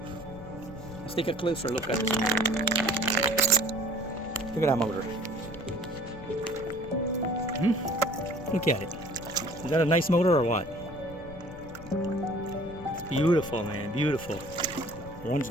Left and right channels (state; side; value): noise; left; rumble, 15 dB below the sound